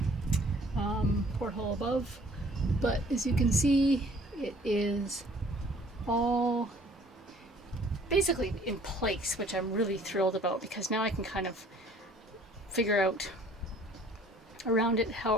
porthole above, but as you can see, it is all basically in place, which I'm really thrilled about because now I can kind of figure out around it how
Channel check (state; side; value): normal; both; correlation 0.55